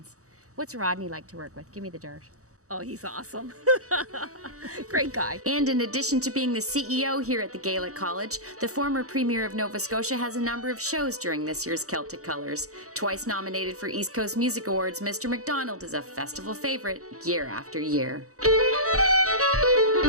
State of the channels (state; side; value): late; left; 0.65 ms